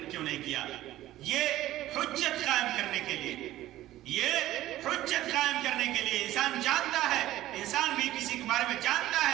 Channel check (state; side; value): quieter; left; 14.8 dB